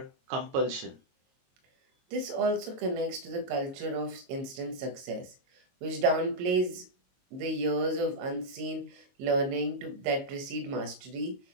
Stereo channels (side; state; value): left; late; 22 ms